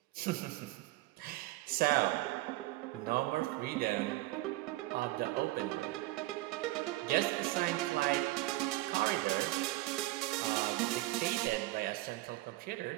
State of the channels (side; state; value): left; quieter; 18.9 dB